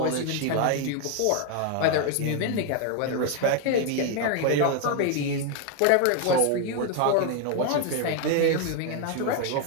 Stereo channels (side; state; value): both; different; correlation 0.01